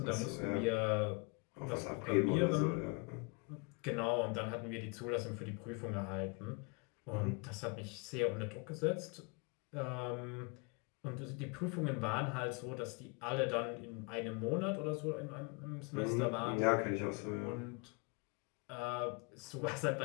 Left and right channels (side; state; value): right; quieter; 31.5 dB